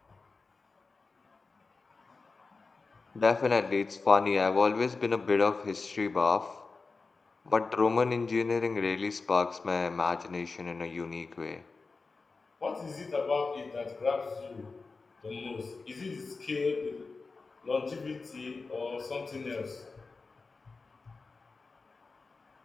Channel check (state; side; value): quieter; right; 4.1 dB